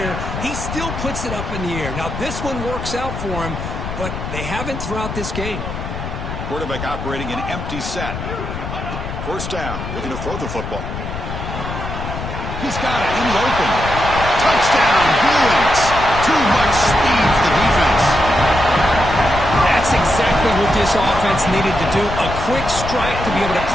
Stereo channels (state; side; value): noise; left; rumble, 7 dB below the sound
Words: He still puts it up in the air. Now, this one works out for him, but they haven't throughout this game. Quarterback operating an empty set. First down, looking to throw the football. He's got it in the open. Touchdown, Bruins. Too much speed for the defense. That's exactly what this offense needed to do. A quick strike to be able to